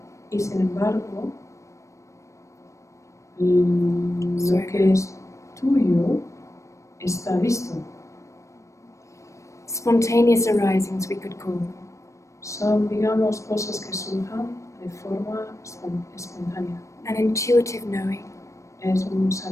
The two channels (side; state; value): right; late; 0.15 ms